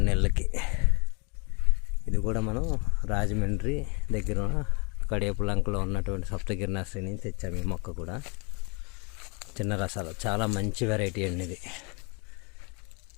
నెలలకి. ఇది కూడా మనం రాజమండ్రి దగ్గర కడియపులంకలో ఉన్నటువంటి సప్తగిరి నర్సరీ నుంచి తెచ్చాము. ఈ మొక్క కూడా చిన్న రసాలు, చాలా మంచి వెరైటీ అండి ఇది.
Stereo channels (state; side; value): quieter; right; 32.5 dB